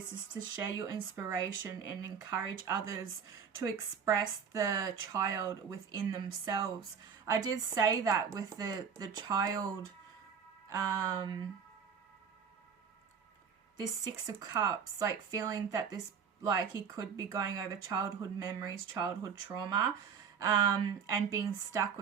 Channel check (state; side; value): quieter; left; 6.9 dB